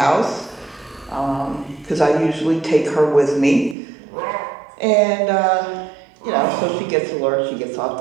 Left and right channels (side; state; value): left; drops out; at 3.8 s